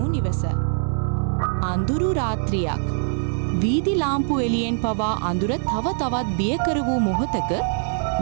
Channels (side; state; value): left; silent; digital silence